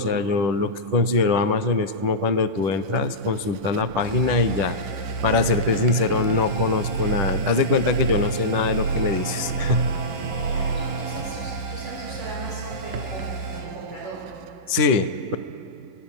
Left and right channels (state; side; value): late; left; 10 ms